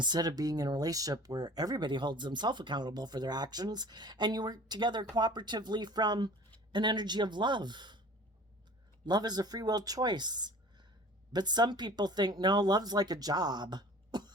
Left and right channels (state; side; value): normal; both; correlation 0.44